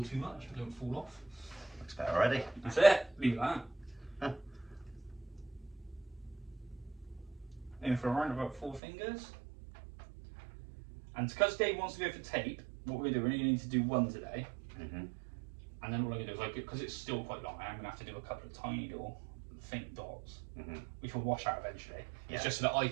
too much, don't fall off. Looks better already. That's it, leave that. In for around about 4 fingers. And because Dave wants to go for tape, what we're going to do, we're only need to do 1 today. And then all I'm going to do is, because it's still quite long, I'm going to have to do a couple of tiny little faint dots, which will wash out eventually. Yeah. It's just so that I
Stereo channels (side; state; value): left; drops out; at 8.8 s